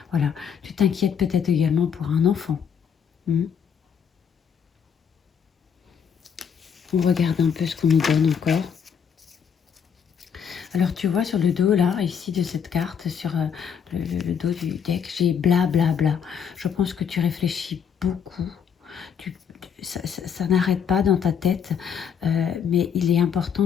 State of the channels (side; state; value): right; quieter; 7.4 dB